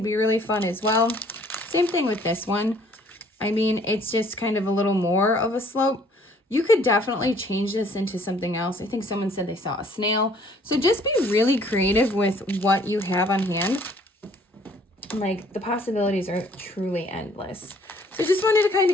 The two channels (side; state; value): both; normal; correlation 0.59